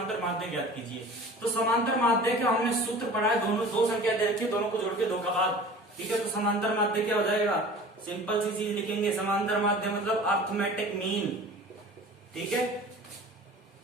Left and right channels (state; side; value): normal; both; correlation 0.41